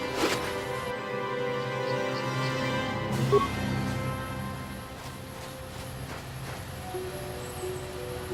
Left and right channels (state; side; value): identical; both; correlation 1.00